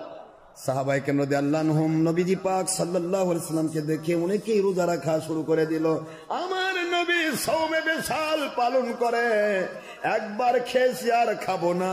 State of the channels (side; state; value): both; identical; correlation 1.00